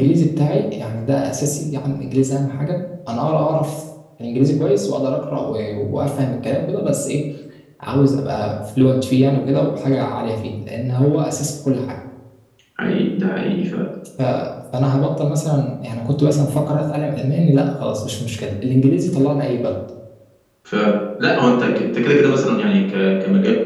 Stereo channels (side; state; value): both; identical; correlation 1.00